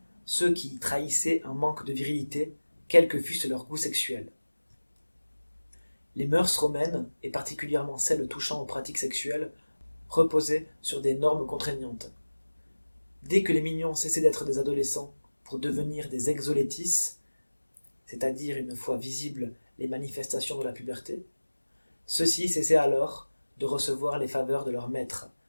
ceux qui trahissaient un manque de virilité, quel que fût leur goût sexuel. Les mœurs romaines, et particulièrement celles touchant aux pratiques sexuelles, reposaient sur des normes contraignantes. Dès que les mignons cessaient d'être des adolescents pour devenir des exolétis, c'est-à-dire une fois visibles les manifestations de la puberté, ceux-ci cessaient alors de recevoir les faveurs de leur maître,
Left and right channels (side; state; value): both; inverted; correlation -1.00